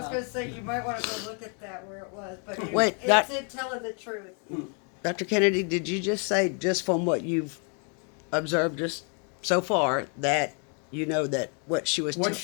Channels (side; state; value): right; quieter; 39.0 dB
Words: going to say, you might want to go look at that where it was, but Wait, it's it telling the truth. Dr. Kennedy, did you just say, just from what you've observed just so far, that you know that what she was What